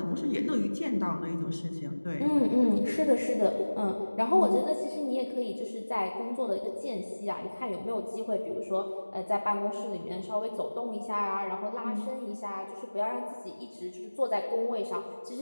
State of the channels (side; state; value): both; inverted; correlation -1.00